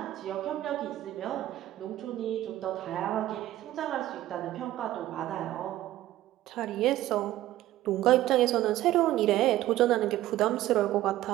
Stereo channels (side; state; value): left; quieter; 14.6 dB